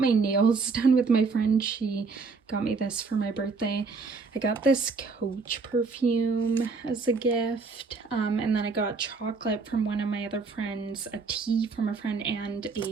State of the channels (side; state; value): left; quieter; 4.5 dB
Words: nails done with my friend. She got me this for my birthday. I got this Coach perfume as a gift, and then I got chocolate from one of my other friends, a tea from a friend, and